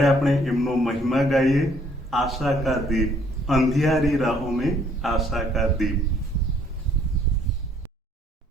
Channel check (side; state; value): both; normal; correlation 0.63